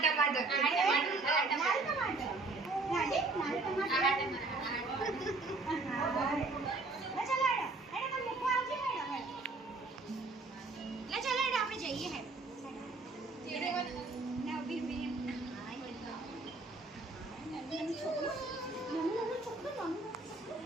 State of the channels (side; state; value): left; quieter; 3.5 dB